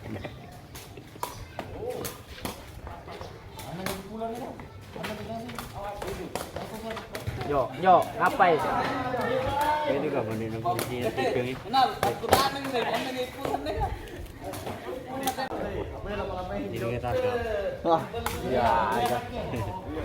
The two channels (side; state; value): both; identical; correlation 1.00